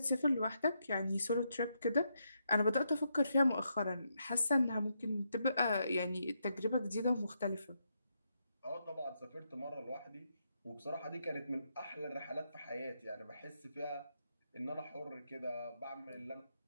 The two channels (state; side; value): inverted; both; correlation -0.81